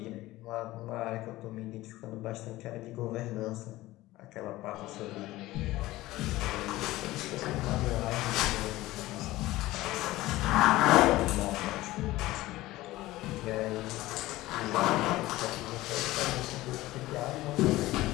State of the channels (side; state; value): right; quieter; 17.6 dB